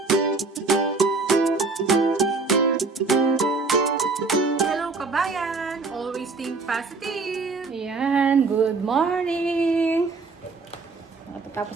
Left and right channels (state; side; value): quieter; left; 4.0 dB